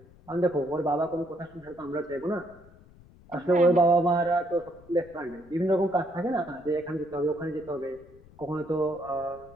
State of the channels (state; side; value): noise; left; rumble, 24 dB below the sound